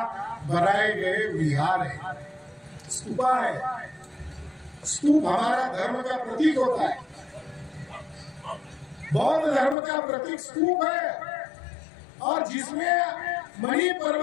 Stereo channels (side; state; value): right; drops out; at 9.8 s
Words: बनाए गए विहार है, स्तूपा है। स्तूप हमारा धर्म का प्रतीक होता है। बौद्ध धर्म का प्रतीक स्तूप है, और जिसमें मणि